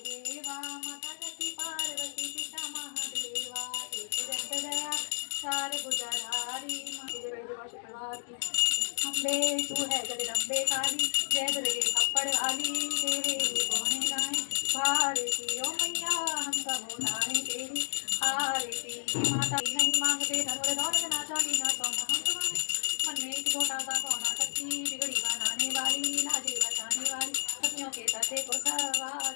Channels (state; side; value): silent; right; digital silence